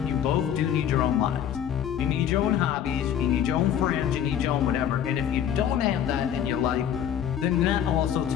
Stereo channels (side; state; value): right; quieter; 9.6 dB